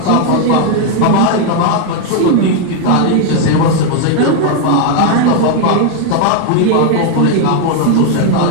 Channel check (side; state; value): both; different; correlation 0.00